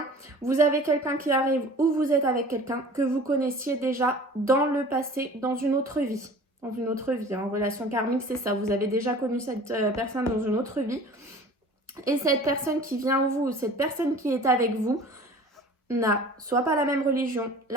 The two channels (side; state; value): both; normal; correlation 0.44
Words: vous avez quelqu'un qui arrive ou vous êtes avec quelqu'un que vous connaissiez déjà dans le passé, dans une autre vie. Dans une autre vie. En relation karmique, c'est ça. Vous avez déjà connu cette personne dans une autre vie. Et cette personne qui vient à vous, cette personne qui est avec vous, n'a soit pas la même religion,